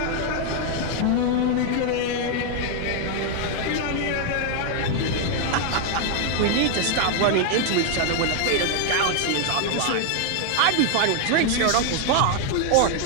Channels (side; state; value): both; different; correlation 0.00